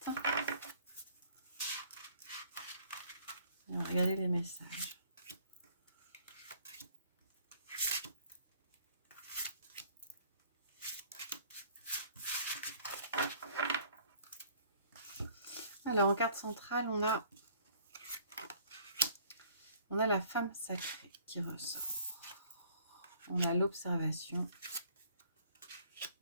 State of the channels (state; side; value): inverted; both; correlation -0.57